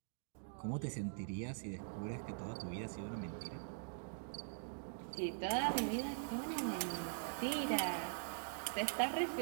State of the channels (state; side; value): silent; left; digital silence